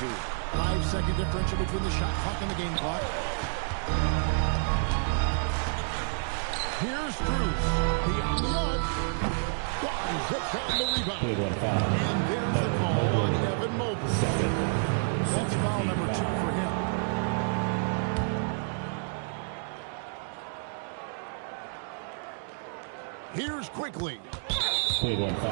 5-second differential between the shot clock and the game clock. Here's Cruz. Beyond the arc. Barnes hits down the rebound. And there's the call on Evan Mobley. That's foul number 2 for him. Here's Quickly. Play 1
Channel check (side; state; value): left; silent; digital silence